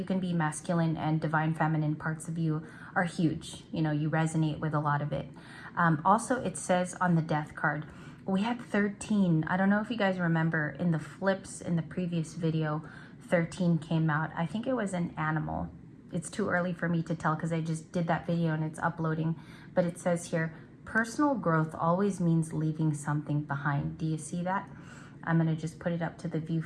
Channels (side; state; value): both; identical; correlation 1.00